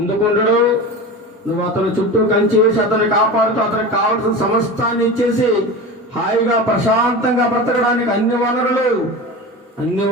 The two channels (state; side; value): normal; both; correlation 0.29